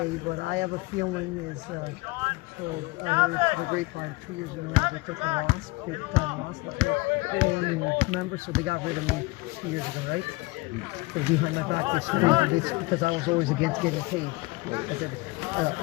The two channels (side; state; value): right; quieter; 23.2 dB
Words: but I have a feeling is, so I heard the grapevine 2 years ago they took a loss, big time loss. Remember, so they got rid of me 2 years ago, right? They behind my back this because I was always against getting paid.